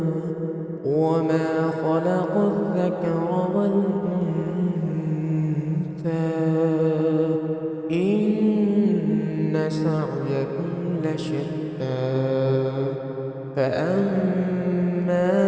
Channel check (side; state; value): both; identical; correlation 1.00